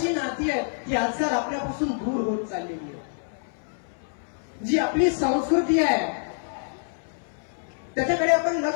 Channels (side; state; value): right; silent; 61 dB below the other